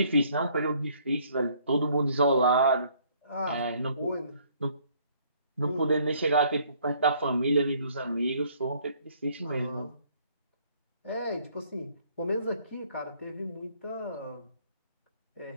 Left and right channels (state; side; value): inverted; both; correlation -0.63